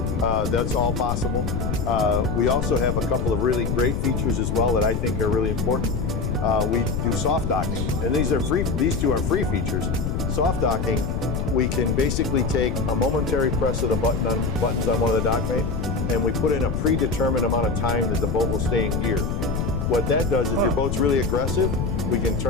That's all possible. We also have a couple of really great features as well that I think are really important. We do soft docking, and these two are free features. Soft docking, we can basically take a momentary press of the buttons on one of the Dockmate, and we put in a predetermined amount of time that the boat will stay in gear. What that does, if your boat's really aggressive, we can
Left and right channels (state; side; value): noise; left; rumble, 1 dB below the sound